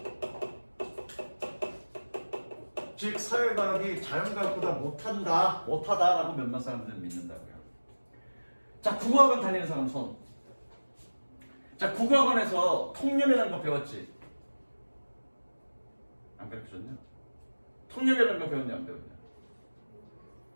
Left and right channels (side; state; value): both; inverted; correlation -1.00